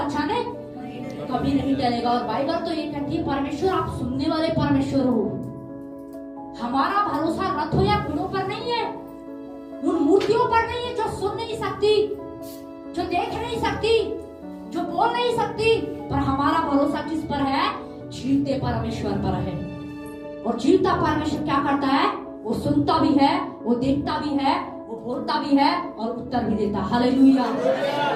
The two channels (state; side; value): identical; both; correlation 1.00